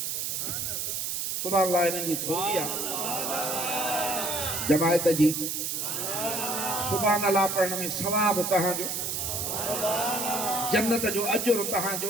सुभाणे अल्लाह इन्हनि जी थोरी आहे जमायत जी सुभाणे अल्लाह पढ़ण में सवाब तव्हांजो जन्नत जो अजुर तव्हांजो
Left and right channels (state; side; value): noise; right; hiss, 2 dB below the sound